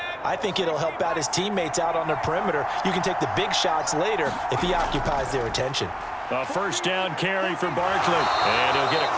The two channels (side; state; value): both; identical; correlation 1.00